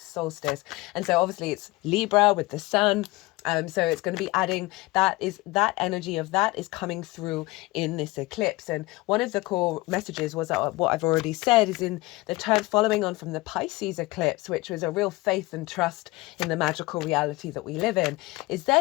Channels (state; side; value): quieter; right; 21.4 dB